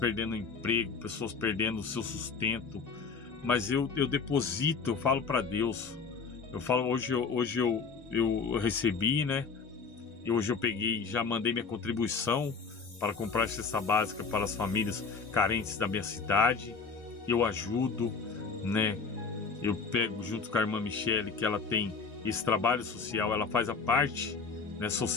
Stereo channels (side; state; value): right; quieter; 5.1 dB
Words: emprego, pessoas perdendo o seu sustento. Mas eu deposito, eu falo para Deus. Eu falo, hoje eu recebi, né? E hoje eu peguei, já mandei minha contribuição para comprar cesta básica para as famílias carentes da minha cidade. Eu ajudo, né? Eu pego junto com a irmã Michele, que ela tem esse trabalho social, ela faz a parte, né,